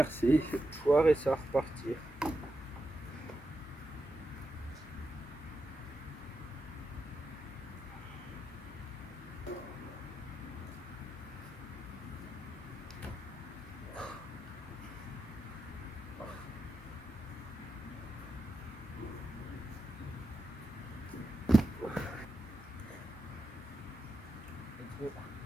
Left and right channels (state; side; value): normal; both; correlation 0.87